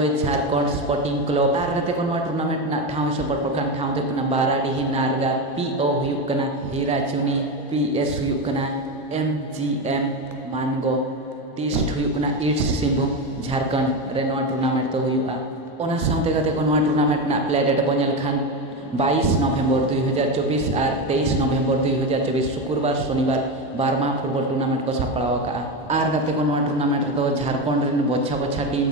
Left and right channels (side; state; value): both; normal; correlation 0.15